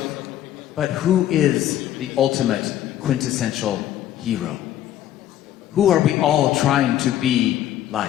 But who is the ultimate quintessential hero? Who are we all trying to be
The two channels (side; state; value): right; quieter; 12.0 dB